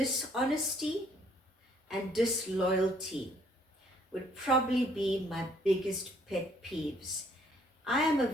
and disloyalty would probably be my biggest pet peeves. I am a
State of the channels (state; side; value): normal; both; correlation 0.64